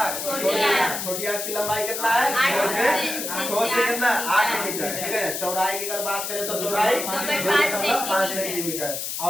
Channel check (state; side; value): noise; left; hiss, 4 dB below the sound